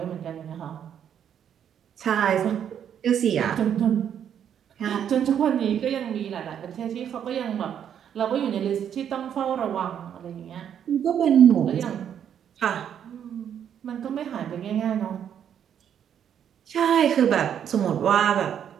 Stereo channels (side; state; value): left; quieter; 9.0 dB